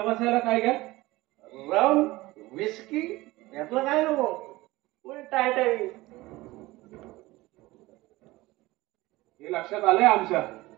बसायला काय घ्या? रम विस्की यातलं काय नको. टाईट आहे. हे लक्षात आलंय आमच्या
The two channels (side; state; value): left; quieter; 19.5 dB